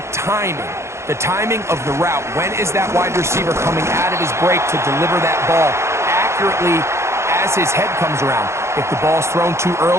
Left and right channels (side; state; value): left; late; 0.13 ms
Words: timing. The timing of the route. When is that wide receiver coming out of his break to deliver that ball accurately as his head comes around? If the ball's thrown too